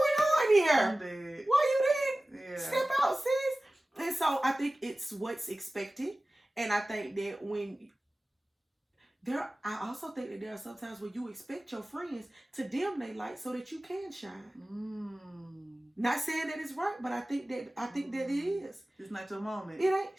on here? I'm dead. Why you didn't step out, sis? And so I think it's what's expected. And I think that I also think that there are sometimes where you expect your friends to dim their light so that you can shine. Not saying that it's right, but I think that it is. It's not your moment. It ain't.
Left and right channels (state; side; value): normal; both; correlation 0.97